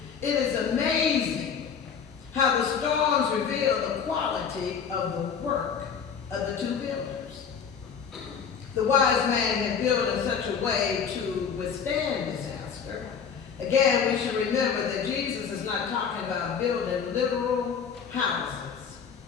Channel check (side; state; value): right; quieter; 6.8 dB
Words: It is amazing how the storms reveal the quality of the work of the two builders. The wise man had built in such a way to withstand disaster. Again, we should remember that Jesus is not talking about building literal houses.